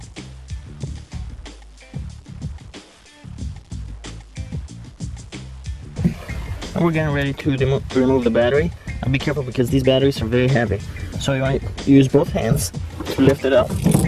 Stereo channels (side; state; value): both; identical; correlation 1.00